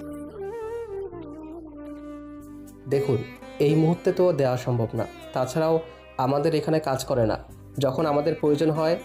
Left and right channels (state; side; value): identical; both; correlation 1.00